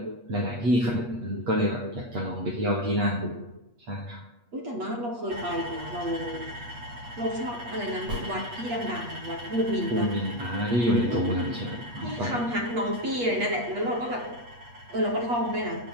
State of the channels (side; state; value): left; late; 8.4 ms